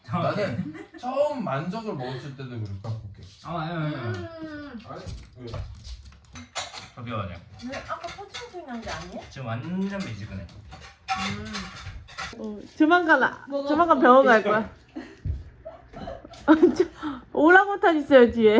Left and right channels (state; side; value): identical; both; correlation 1.00